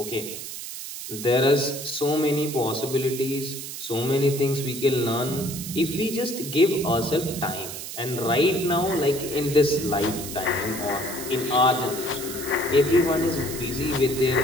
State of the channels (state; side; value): noise; right; hiss, 9 dB below the sound